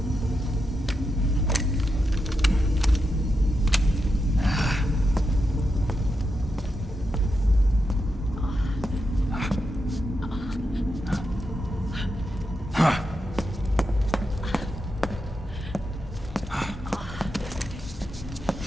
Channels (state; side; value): normal; both; correlation 0.86